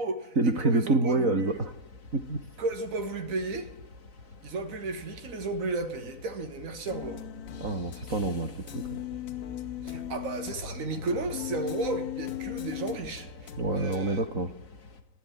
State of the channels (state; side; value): late; left; 4.0 ms